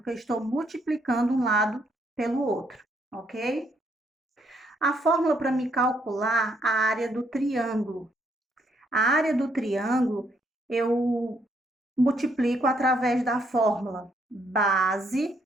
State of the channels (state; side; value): normal; both; correlation 0.71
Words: eu estou multiplicando um lado pelo outro, ok? A fórmula para me calcular a área do triângulo. A área do triângulo eu multiplico através da fórmula base